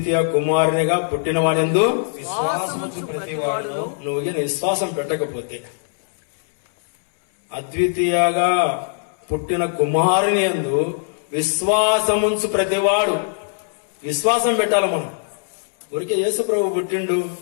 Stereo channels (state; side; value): silent; right; 65 dB below the other